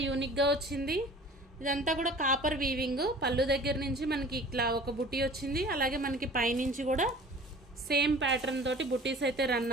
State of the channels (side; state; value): both; normal; correlation 0.45